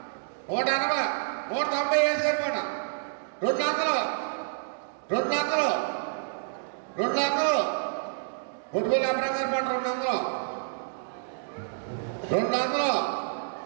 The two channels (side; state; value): left; silent; digital silence